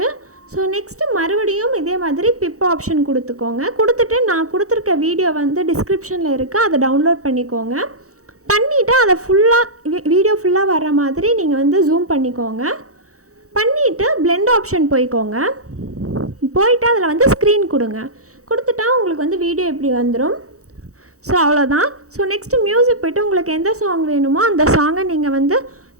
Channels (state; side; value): late; left; 0.65 ms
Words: ஸோ நெக்ஸ்ட்டு மறுபடியும் இதே மாதிரி பிப் ஆப்ஷன் கொடுத்துக்கோங்க. கொடுத்துட்டு நான் கொடுத்துருக்க வீடியோ வந்து டிஸ்கிரிப்ஷனில் இருக்குது, அதை டவுன்லோட் பண்ணிக்கோங்க. பண்ணிவிட்டு அதை வீடியோ ஃபுல்லாக வர்ற மாதிரி நீங்கள் வந்து ஜூம் பண்ணிக்கோங்க. பண்ணிவிட்டு பிளெண்ட் ஆப்ஷன் போய்க்கோங்க. போயிட்டு அதில் வந்து ஸ்க்ரீன் கொடுங்க. கொடுத்துட்டா உங்களுக்கு வந்து வீடியோ இப்படி வந்துடும். ஸோ அவ்வளோதான். ஸோ நெக்ஸ்ட்டு மியூசிக் போய்ட்டு உங்களுக்கு எந்த சாங் வேணுமோ அந்த சாங்கை நீங்கள் வந்து